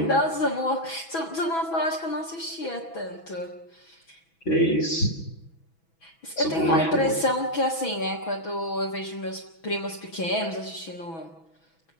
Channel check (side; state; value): right; late; 6.1 ms